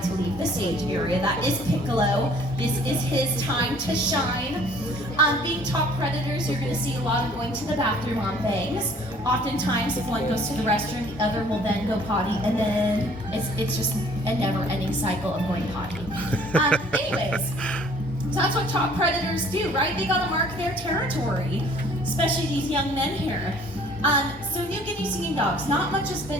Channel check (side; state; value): both; normal; correlation 0.55